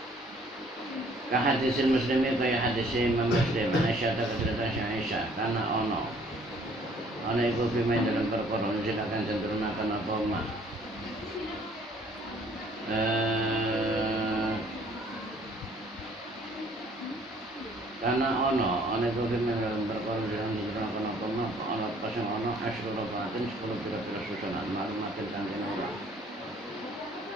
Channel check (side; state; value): both; normal; correlation 0.58